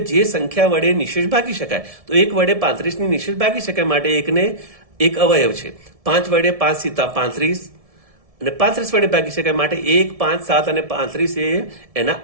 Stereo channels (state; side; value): late; left; 1.7 ms